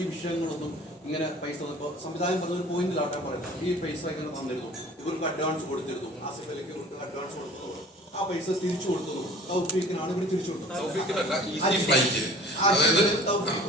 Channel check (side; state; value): both; normal; correlation 0.45